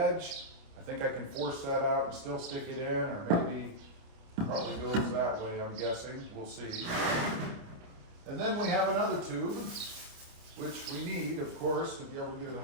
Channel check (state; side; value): late; left; 29 ms